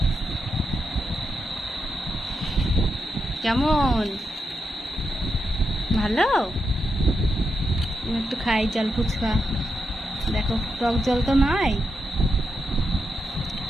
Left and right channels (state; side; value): normal; both; correlation 0.85